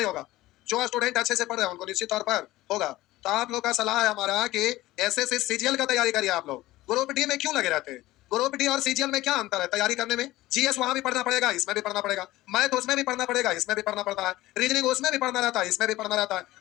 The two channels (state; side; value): quieter; right; 17.2 dB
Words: होगा। जो स्टूडेंट अच्छे से पढ़ रहे हैं उनको निश्चित तौर पर होगा। तो आप लोग का सलाह है हमारा कि एसएससी सीजीएल का तैयारी करिए। आप लोग ग्रुप डी में क्यों लगे रहते हैं? ग्रुप डी और सीजीएल में क्या अंतर है तैयारी करने में? जीएस वहां भी पढ़ना पड़ेगा, इसमें भी पढ़ना पड़ेगा, मैथ उसमें भी पढ़ना पड़ेगा, इसमें भी पढ़ना पड़ता है, रीजनिंग उसमें भी पढ़ना रहता है, इसमें भी पढ़ना रहता